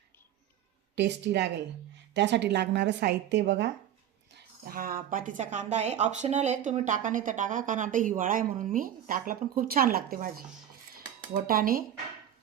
टेस्टी लागेल. त्यासाठी लागणारं साहित्य बघा. हा पातीचा कांदा आहे, ऑप्शनल आहे, तुम्ही टाका नाही तर टाका, कारण आता हिवाळा आहे म्हणून मी टाकला, पण खूप छान लागते भाजी. वटाणे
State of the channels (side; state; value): left; quieter; 10.7 dB